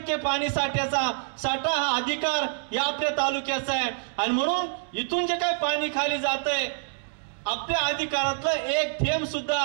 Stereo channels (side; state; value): left; silent; digital silence